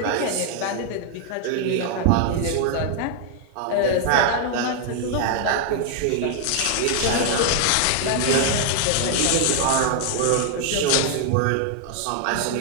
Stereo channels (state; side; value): different; both; correlation 0.00